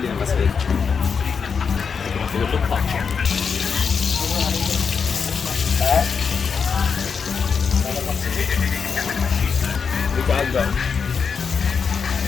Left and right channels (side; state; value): right; quieter; 6.0 dB